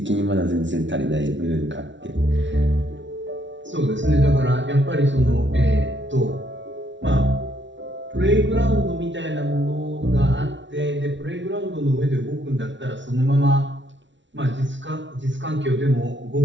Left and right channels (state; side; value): late; left; 0.54 ms